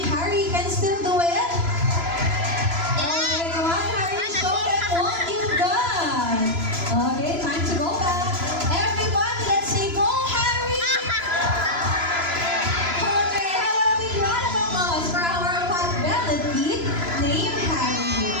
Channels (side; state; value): left; late; 3.0 ms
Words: Harry can still do it? Okay, come on, Harry, show them what you've done. Okay, time to go back. Everybody, let's say go, Harry! Okay, have a big round of applause for our pot-bellied pig named Harry.